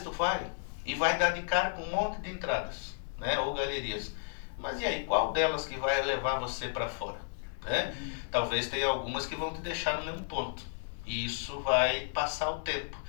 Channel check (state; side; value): silent; right; digital silence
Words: vai e vai dar de cara com um monte de entradas, né, ou galerias. Mas e aí, qual delas que vai levar você para fora? Né? Talvez tenha algumas que vão te deixar no mesmo ponto. E isso vai passar o tempo.